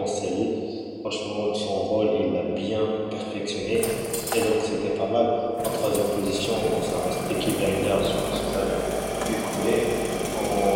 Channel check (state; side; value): identical; both; correlation 1.00